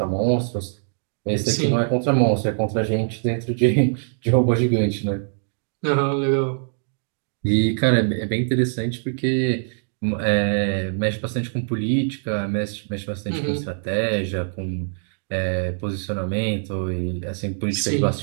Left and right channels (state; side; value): silent; left; digital silence